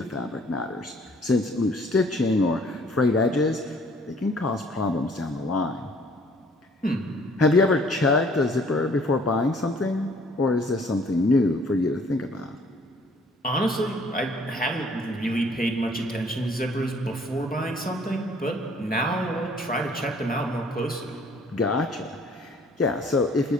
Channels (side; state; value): both; normal; correlation 0.58